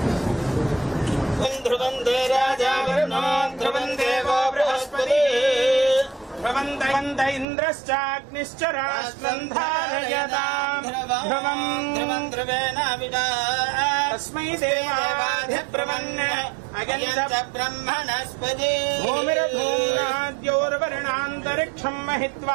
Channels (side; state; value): left; drops out; at 7.5 s